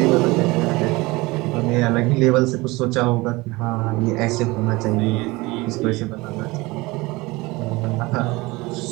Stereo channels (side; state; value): left; quieter; 22.3 dB